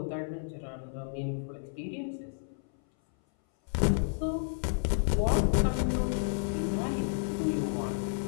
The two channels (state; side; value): silent; right; 57 dB below the other